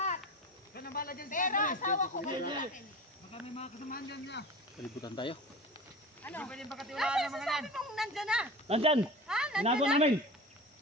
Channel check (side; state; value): both; normal; correlation 0.34